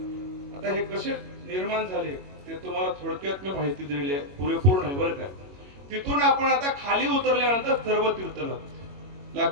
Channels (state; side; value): late; left; 21 ms